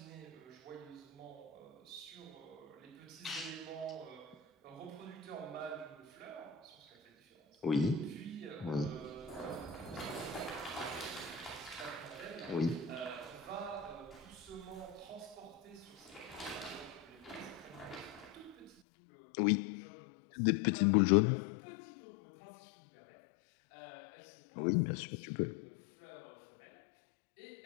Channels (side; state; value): right; drops out; at 18.8 s